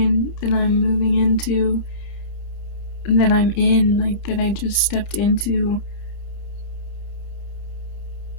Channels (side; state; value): right; late; 31 ms